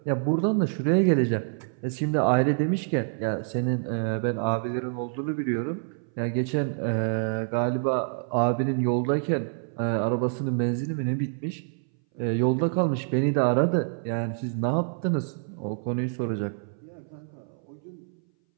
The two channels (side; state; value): left; silent; 59 dB below the other